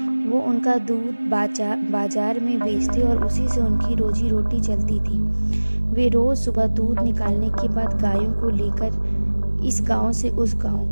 वो उनका दूध बाजार में बेचते और उसी से उनकी रोजी रोटी चलती थी। वे रोज सुबह दूध निकालने के बाद गायों को लेकर इस गांव से उस गांव,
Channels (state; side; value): inverted; both; correlation -1.00